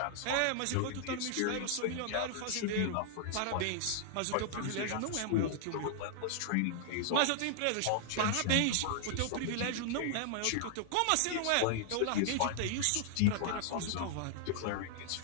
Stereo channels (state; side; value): different; both; correlation -0.01